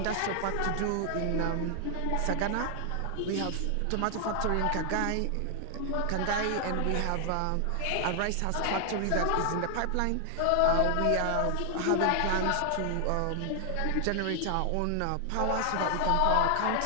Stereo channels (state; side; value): different; both; correlation 0.00